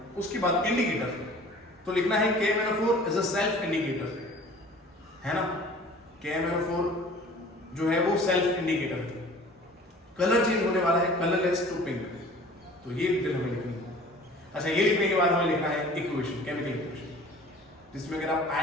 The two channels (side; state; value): both; normal; correlation 0.46